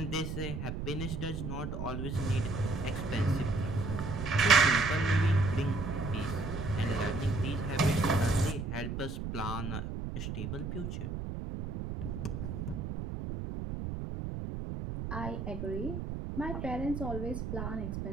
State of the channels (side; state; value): right; noise; rumble, 5 dB below the sound